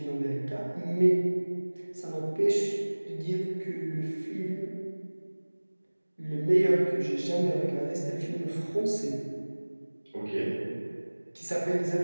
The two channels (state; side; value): inverted; both; correlation -1.00